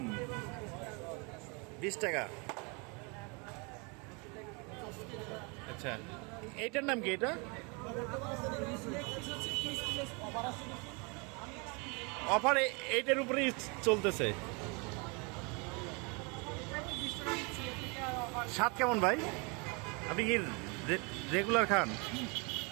20 টাকা। আচ্ছা, এইটার নাম কি? এটা অফার এইটার উপরেই চলতেছে। স্বাদ কেমন ভাই? আপনি কি রেগুলার খান?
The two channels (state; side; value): quieter; left; 31.2 dB